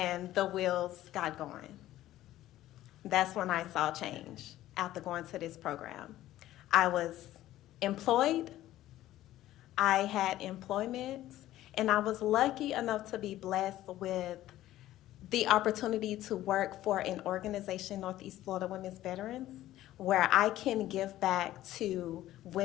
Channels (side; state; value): right; quieter; 14.4 dB